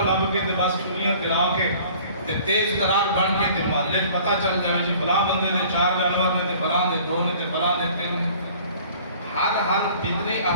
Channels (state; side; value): inverted; both; correlation -0.50